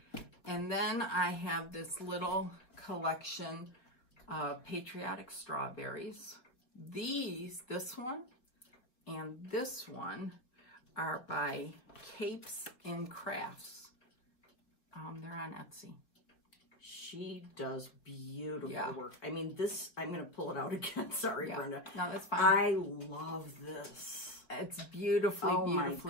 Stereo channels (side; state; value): right; late; 4.0 ms